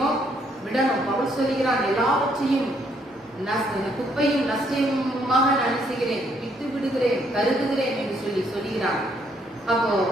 விடணும். பவுல் சொல்லுகிறான், எல்லாவற்றையும் குப்பையும் நஷ்டமாக நினைச்சுகிறேன், விட்டு விடுகிறேன், கருதுகிறேன் என்று சொல்லுகிறான். அப்போ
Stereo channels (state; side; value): normal; both; correlation 0.70